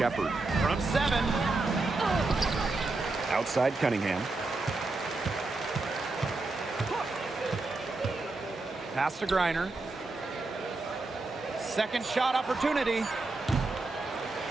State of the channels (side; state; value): left; quieter; 3.4 dB